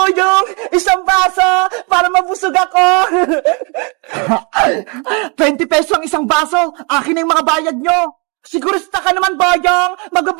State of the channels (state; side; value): quieter; left; 32.4 dB